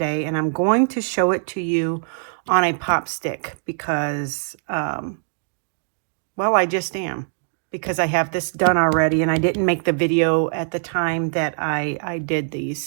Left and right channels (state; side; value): silent; left; digital silence